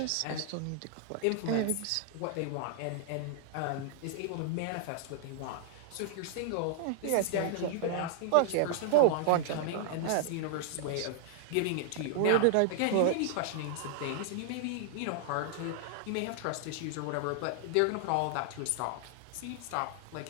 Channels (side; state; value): both; different; correlation 0.00